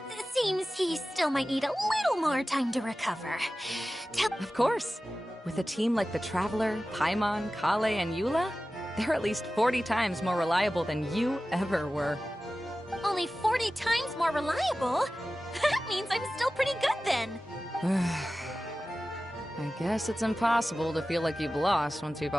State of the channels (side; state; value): both; normal; correlation 0.95